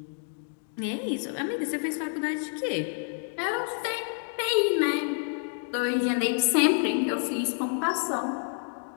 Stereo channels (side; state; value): right; silent; 59 dB below the other